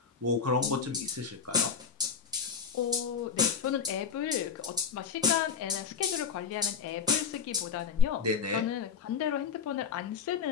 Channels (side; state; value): right; quieter; 6.4 dB